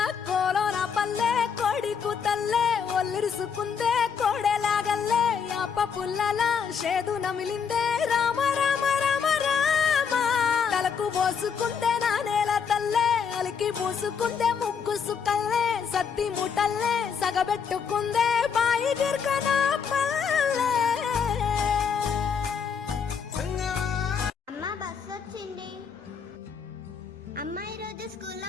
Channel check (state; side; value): quieter; right; 6.6 dB